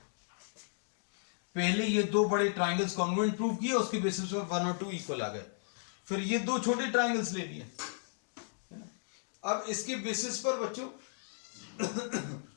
पहले ये 2 बड़े ट्राइंगल्स कॉन्ग्रुएंट प्रूव किए, उसके बेसिस पर 1 और 2 इक्वल आ गए। फिर ये 2 छोटे ट्राइंगल्स ले लिए, है ना। अब इसके बेसिस पर बच्चों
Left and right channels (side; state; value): right; silent; digital silence